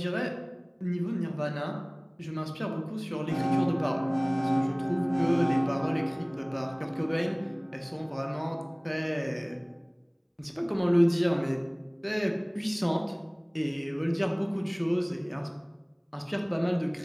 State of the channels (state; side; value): identical; both; correlation 1.00